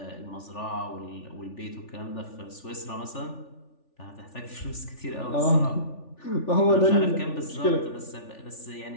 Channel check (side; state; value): right; late; 3.4 ms